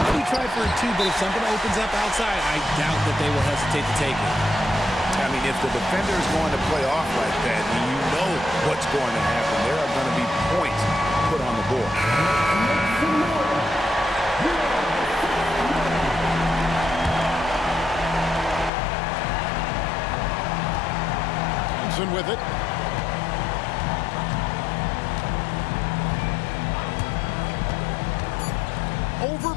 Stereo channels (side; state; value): right; drops out; at 18.7 s